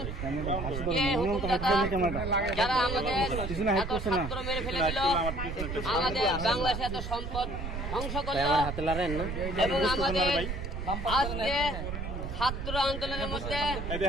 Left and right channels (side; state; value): right; noise; rumble, 5 dB below the sound